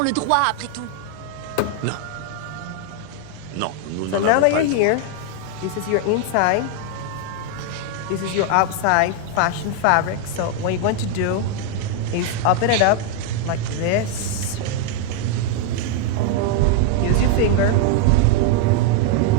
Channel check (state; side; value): different; both; correlation 0.00